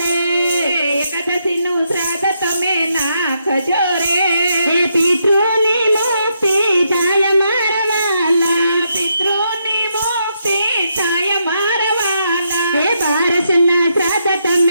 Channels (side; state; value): both; inverted; correlation -0.79